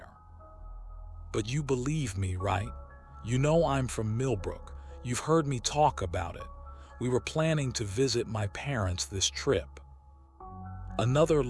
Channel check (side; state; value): both; identical; correlation 1.00